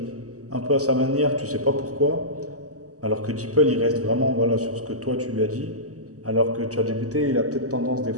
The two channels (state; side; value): late; left; 0.66 ms